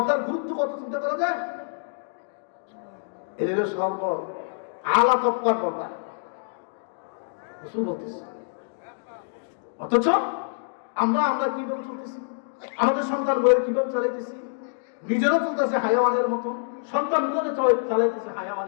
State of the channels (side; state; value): right; silent; digital silence